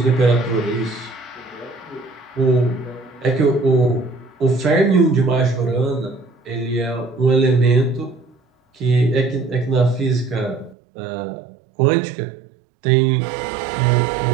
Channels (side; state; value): left; drops out; at 10.8 s